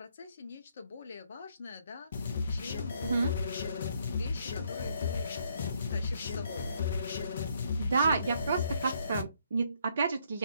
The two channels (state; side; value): inverted; both; correlation -0.70